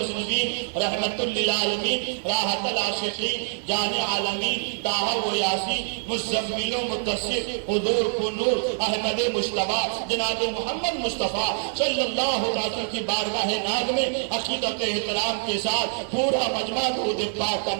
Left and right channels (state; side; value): silent; left; digital silence